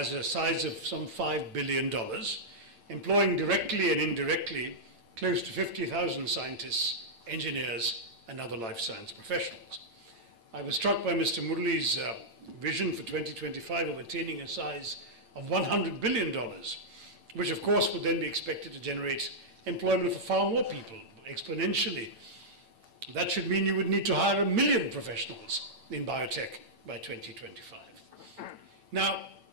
a size of some $5 billion, employing directly and indirectly close to 50,000 scientists, engineers, and other life science professionals. I was struck by Mr. Murali's vision for 2025 of attaining a size of $100 billion, which of course would then be expected to generate employment for far more people, exponentially. That should mean you would need to hire 1 million professionals in biotech by 2025. Now,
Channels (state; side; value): late; left; 8.9 ms